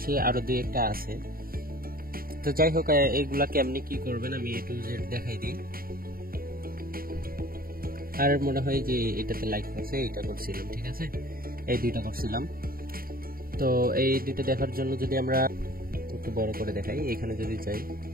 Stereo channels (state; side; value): late; left; 0.43 ms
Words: আরো 2-1টা আছে। তো যাই হোক, এইগুলা কেমনি কি করবেন আমি A to Z দেখাই দিই। আর মনে হয় যে এটাতে লাইক করছে, এটা করছিলাম, ঠিক আছে, এই 2টা করছিলাম। তো এই 2টা দেখার জন্য যদি আমরা একটু বড় করে দেখাই, এখানে যদি যাই,